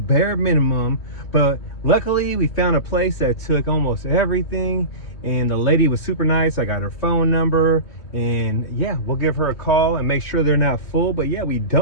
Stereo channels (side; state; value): right; late; 3.1 ms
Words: minimum. But luckily we found a place that took almost everything, and the lady was super nice. I got her phone number, and yeah, we'll give her a call and make sure they're not full. But yeah, we